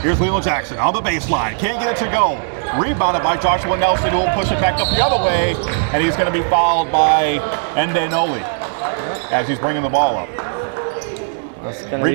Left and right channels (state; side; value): silent; left; digital silence